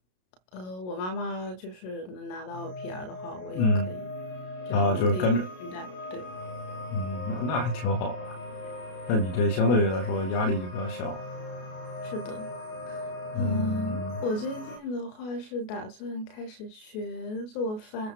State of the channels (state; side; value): late; right; 33 ms